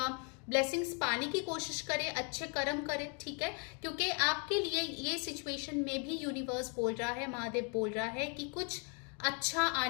ब्लेसिंग्स पाने की कोशिश करे, अच्छे कर्म करे, ठीक है। क्योंकि आपके लिए ये सिचुएशन में भी यूनिवर्स बोल रहा है, महादेव बोल रहा है कि कुछ अच्छा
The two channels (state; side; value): quieter; right; 37.0 dB